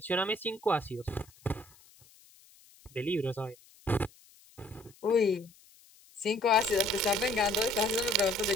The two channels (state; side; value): noise; left; hiss, 27 dB below the sound